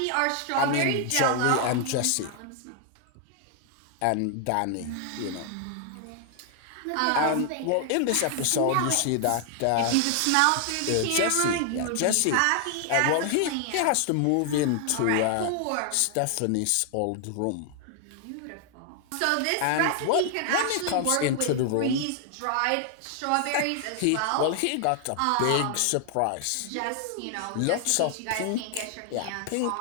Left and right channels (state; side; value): different; both; correlation 0.00